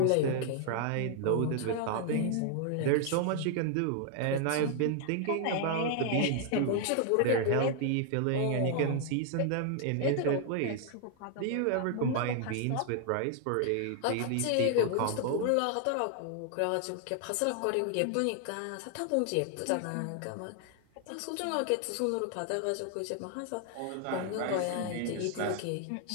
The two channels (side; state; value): both; different; correlation 0.00